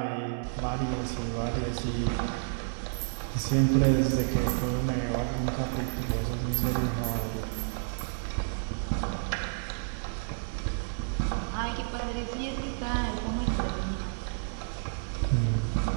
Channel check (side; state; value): left; silent; 58 dB below the other